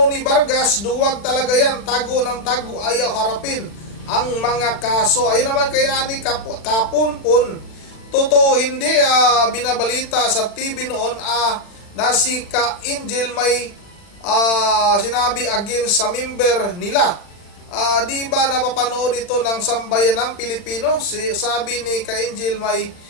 Vargas, duwag talaga yan, tago ng tago, ayaw harapin ang mga kaso. Ayun naman kay Ani Kapunpun, totoo hindi, binabalita sa TV noon na si Ka Angel may sinabi against sa member nila. Di ba napapanood ito ng sambayan ng Pilipino? Sabi ni Ka Angel may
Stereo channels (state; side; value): late; right; 40 ms